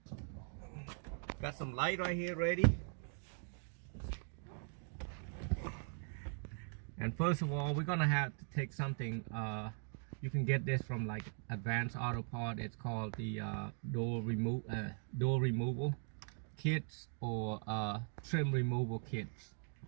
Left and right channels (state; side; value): silent; left; 51 dB below the other